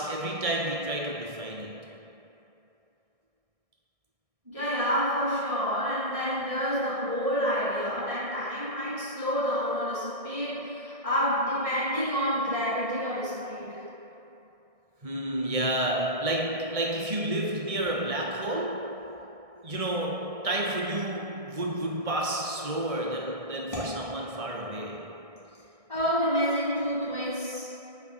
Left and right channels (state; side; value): late; left; 1.6 ms